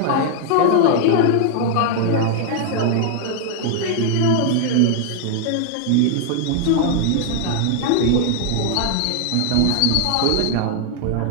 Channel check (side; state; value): both; different; correlation 0.00